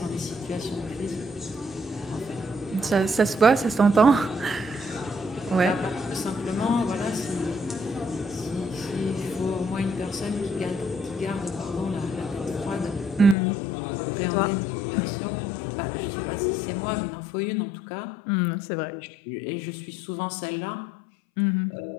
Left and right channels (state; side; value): drops out; right; at 13.4 s